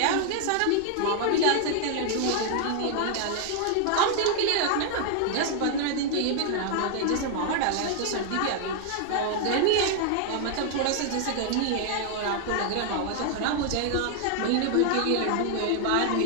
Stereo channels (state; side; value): different; both; correlation 0.00